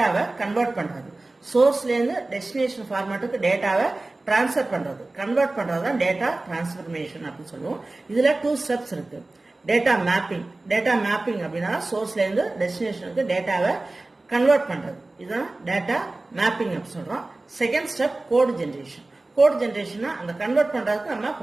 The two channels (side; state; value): left; quieter; 3.0 dB